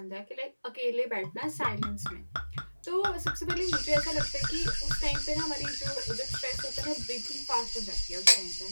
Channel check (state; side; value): inverted; both; correlation -1.00